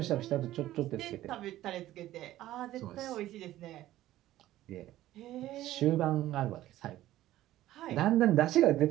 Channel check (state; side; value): quieter; left; 14.6 dB